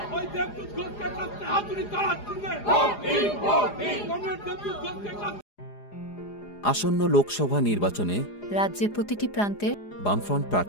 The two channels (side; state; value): right; late; 4.9 ms